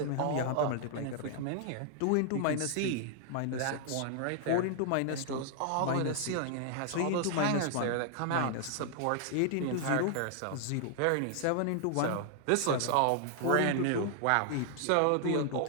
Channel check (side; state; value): both; different; correlation -0.01